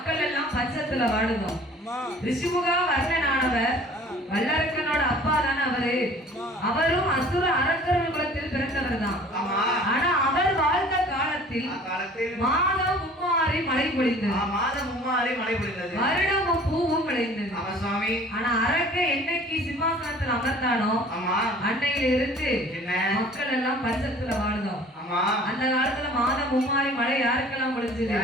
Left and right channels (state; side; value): normal; both; correlation 0.49